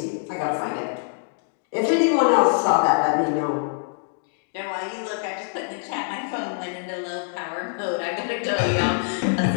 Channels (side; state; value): right; silent; 62 dB below the other